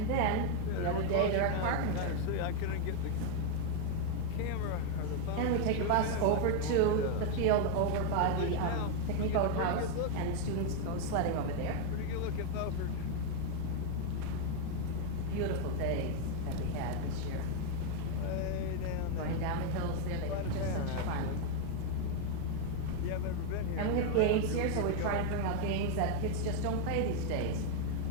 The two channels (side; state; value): both; different; correlation 0.00